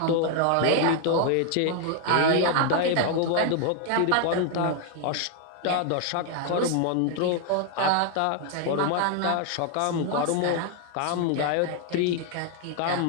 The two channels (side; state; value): both; different; correlation 0.00